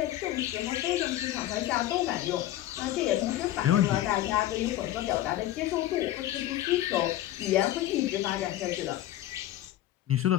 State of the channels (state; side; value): quieter; right; 14.0 dB